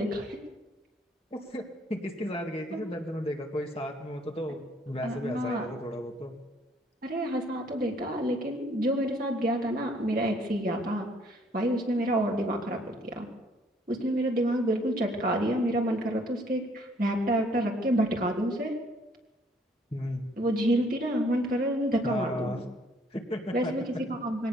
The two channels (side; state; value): both; normal; correlation 0.63